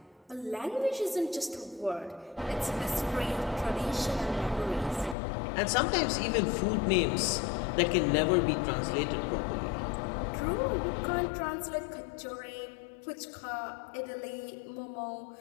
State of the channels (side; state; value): right; drops out; at 5.2 s